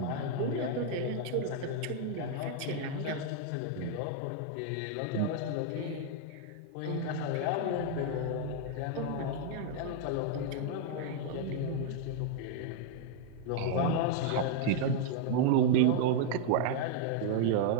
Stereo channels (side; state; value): both; different; correlation 0.00